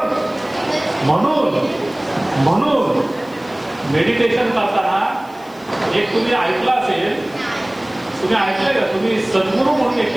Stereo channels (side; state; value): left; noise; hiss, 27 dB below the sound